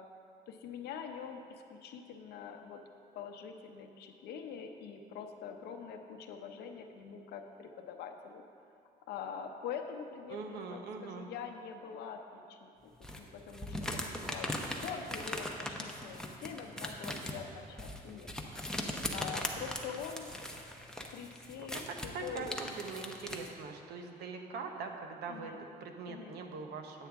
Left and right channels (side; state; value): both; normal; correlation 0.31